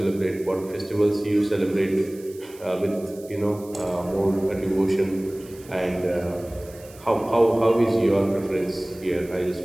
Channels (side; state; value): right; noise; hiss, 22 dB below the sound